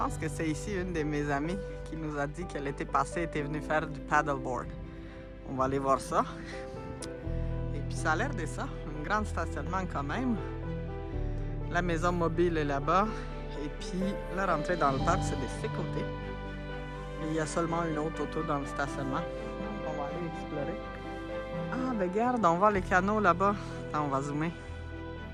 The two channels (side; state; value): both; identical; correlation 1.00